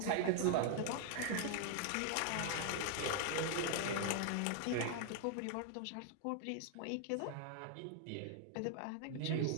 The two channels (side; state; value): both; different; correlation 0.00